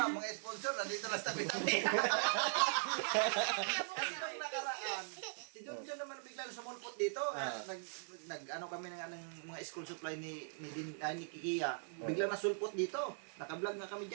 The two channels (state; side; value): silent; left; digital silence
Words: mga sponsor, nandito lang sa tabi-tabi. Kasi nung nakaraan, si John naman bigla sumulpot dito. Nag-ano kami ng mga school supply ni Kikia. Bigla nasulpot dito. Naka-vlog nga kami